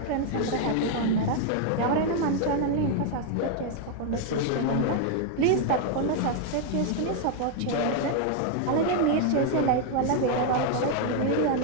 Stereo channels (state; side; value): different; both; correlation 0.00